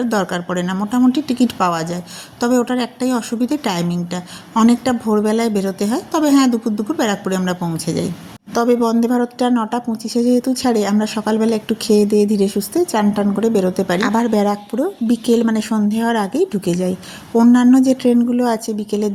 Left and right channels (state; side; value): identical; both; correlation 1.00